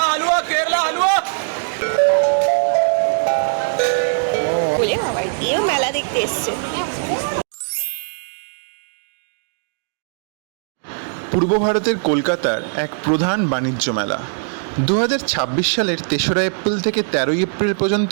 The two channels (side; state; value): left; silent; digital silence